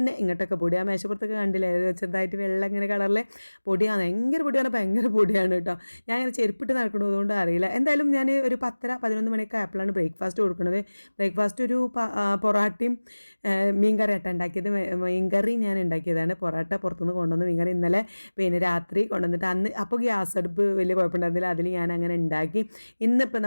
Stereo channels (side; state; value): both; inverted; correlation -1.00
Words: ഇങ്ങോട്ടൊക്കെ പൊടി. ആ മേശപ്പുറത്തൊക്കെ കണ്ടില്ലേ, ചെറുതായിട്ട് വെള്ളം ഇങ്ങനെ കളറിലെ പൊടിയാണ്. ഭയങ്കര പൊടിയാണ്, ഭയങ്കര പൊടിയാണ് കേട്ടോ. ഞാൻ അങ്ങനെ ചെരുപ്പിട്ട് നടക്കണതുകൊണ്ട് അറിയില്ല. എന്തായാലും ഞാൻ ഒരു 10-11 മണിയൊക്കെ ആയപ്പോഴാണ് ബ്രേക്ക്ഫാസ്റ്റ് കൊടുക്കുന്നത്. ബ്രേക്ക്ഫാസ്റ്റ് ഒരു പൊറാട്ടയും മീൻകറി ആട്ട ഉണ്ടാക്കിയത്. മീൻകറി ഞാൻ ഉണ്ടാക്കിയതാണ്. പൊറാട്ട പുറത്തുനിന്ന് കൊണ്ടുവന്ന് മീൻകറി ഇന്നലെ പിന്നെ രാത്രി കൊണ്ടുവന്നിട്ട് അന്ന് അപ്പോൾ ഗ്യാസ് അടുപ്പ് വലിയ കുഴപ്പമുണ്ടായിരുന്നില്ല. അതിൽ ഞാൻ അങ്ങനെ ഉണ്ടാക്കി. ഇന്നിപ്പോൾ